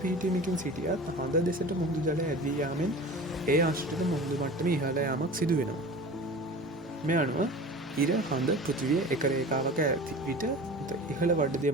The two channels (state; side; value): normal; both; correlation 0.37